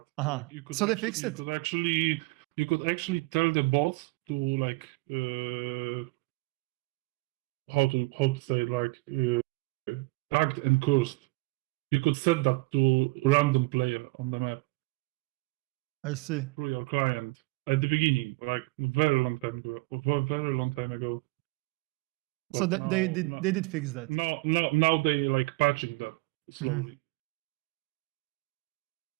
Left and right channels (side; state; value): left; quieter; 24.2 dB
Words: So they fixed it. You could actually tell the bot to like how to say it, like tagged and cursed. You could set that to random player on the map. I see. Through your client at the beginning, like very long time ago. So they did fix that. Now they like patching that slowly.